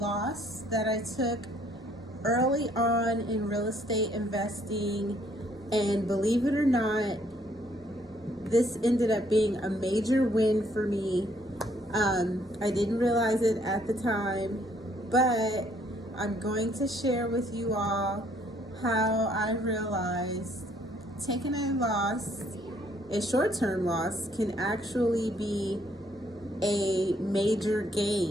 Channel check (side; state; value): both; normal; correlation 0.66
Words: that I took early on in real estate investing, and believe it or not, this ended up being a major win for me. I didn't realize it at the time, but I'm going to share with you all how I realized taking a loss, a short-term loss, can actually be a major